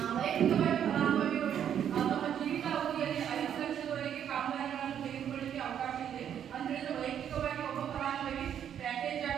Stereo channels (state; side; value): quieter; left; 9.3 dB